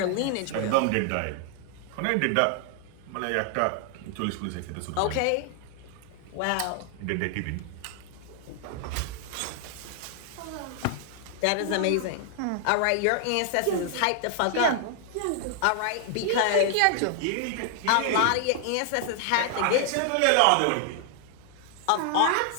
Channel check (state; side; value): different; both; correlation 0.00